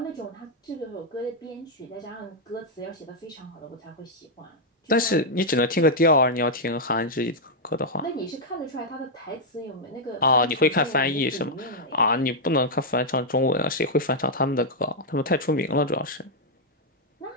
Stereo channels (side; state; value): both; normal; correlation -0.03